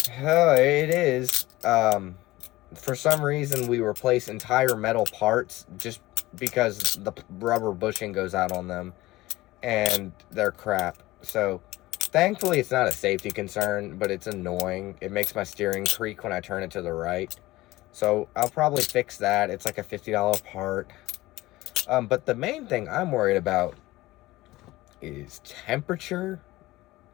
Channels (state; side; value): quieter; right; 18.4 dB